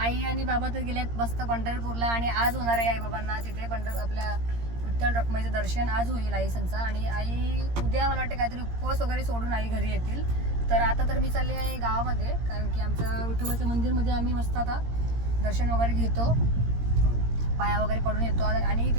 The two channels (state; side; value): late; left; 17 ms